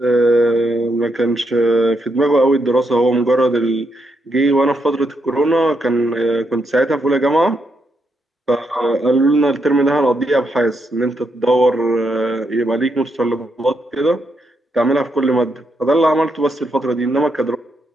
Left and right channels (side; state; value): both; normal; correlation 0.80